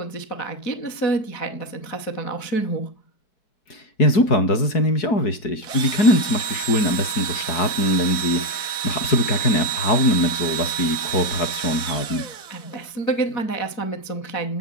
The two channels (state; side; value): late; right; 4.6 ms